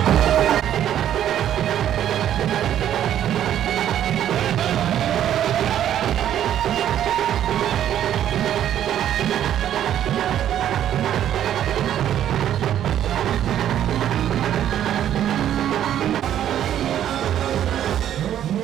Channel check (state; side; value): quieter; left; 10.8 dB